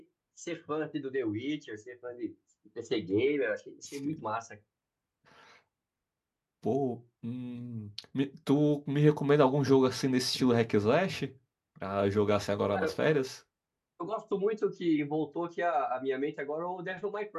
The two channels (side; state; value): both; identical; correlation 1.00